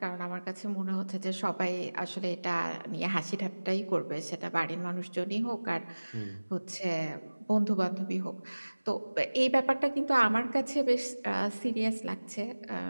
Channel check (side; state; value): both; inverted; correlation -1.00